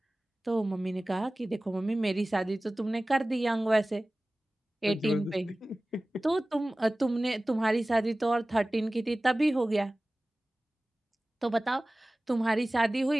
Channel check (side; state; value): both; normal; correlation 0.98